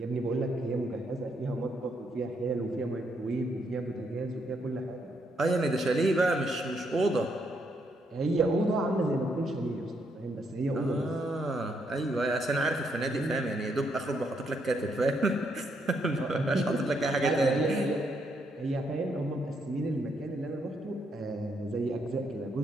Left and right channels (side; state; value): both; normal; correlation 0.76